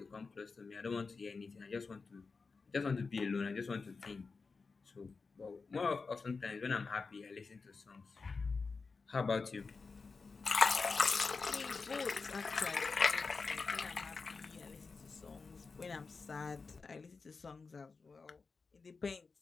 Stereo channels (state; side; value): quieter; right; 4.5 dB